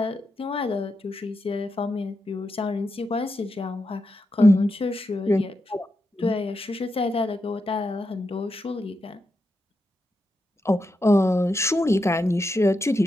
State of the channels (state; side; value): normal; both; correlation 0.86